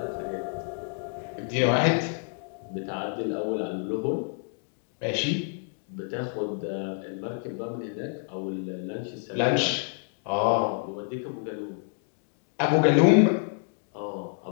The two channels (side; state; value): right; silent; 59 dB below the other